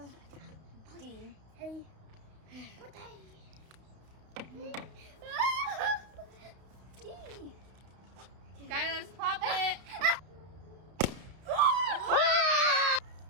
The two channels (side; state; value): left; late; 32 ms